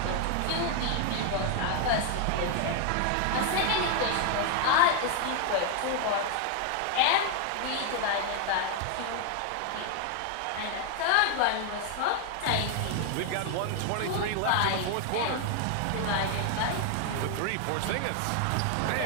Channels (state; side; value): different; both; correlation 0.00